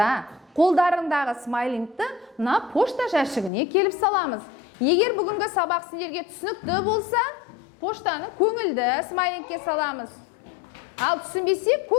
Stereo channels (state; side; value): drops out; right; at 3.5 s